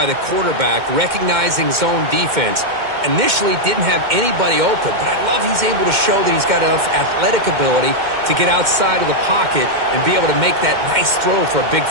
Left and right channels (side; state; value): left; late; 2.1 ms